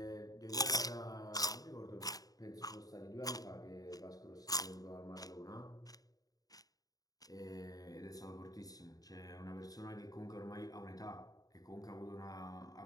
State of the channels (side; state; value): right; late; 0.18 ms